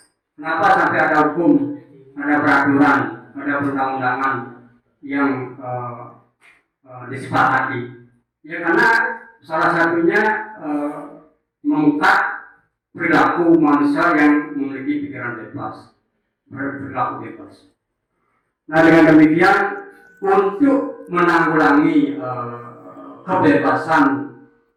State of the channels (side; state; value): both; identical; correlation 1.00